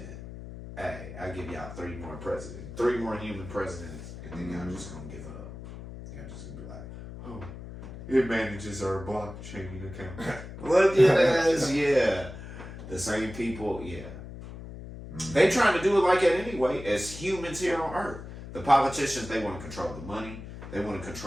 Hey, I give y'all 3 more presidents, 3 more human presidents, and then y'all just gonna give up. Y'all just gonna be like, oh. It manages our blockchain account. Look at us, yeah. The same people, yeah. They trying to do it like that anyway, as humans here on Earth. The politicians, they want to control the money. They want to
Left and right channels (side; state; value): left; noise; hum, 12 dB below the sound